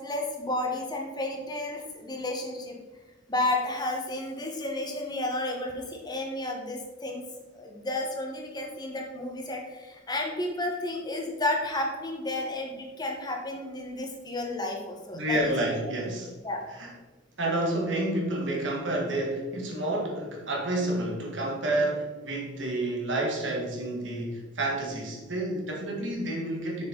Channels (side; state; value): both; normal; correlation 0.25